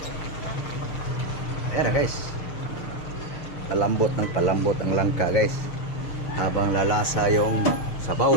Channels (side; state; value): right; late; 6.6 ms